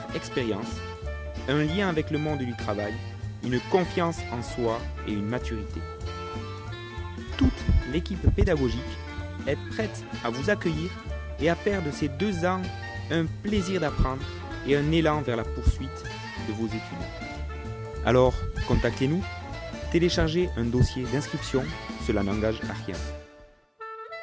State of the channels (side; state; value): both; identical; correlation 1.00